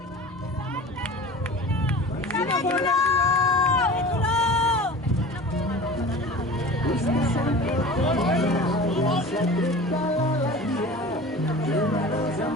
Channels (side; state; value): both; normal; correlation 0.38